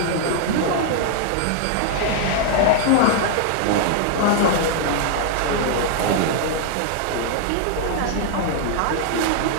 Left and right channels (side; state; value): both; different; correlation -0.01